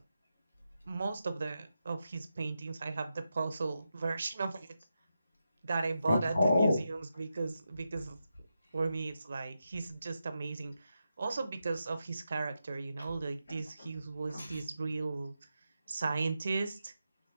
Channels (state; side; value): inverted; both; correlation -0.88